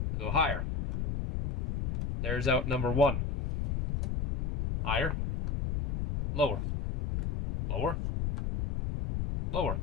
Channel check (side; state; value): left; noise; rumble, 2 dB below the sound